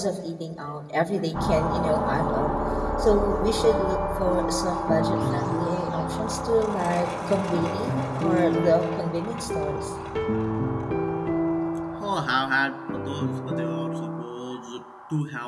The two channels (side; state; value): both; identical; correlation 1.00